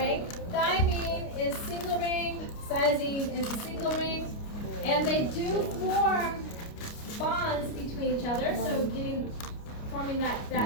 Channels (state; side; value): late; right; 29 ms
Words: Thymine is single ring. Cytosine is a single ring. And they do form bonds between each other, so forming